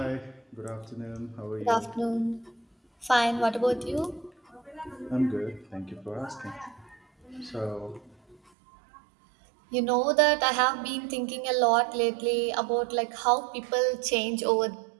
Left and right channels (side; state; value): left; drops out; at 8.3 s